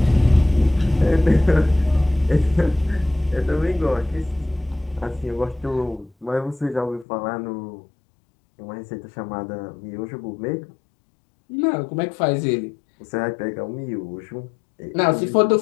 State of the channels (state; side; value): drops out; right; at 7.1 s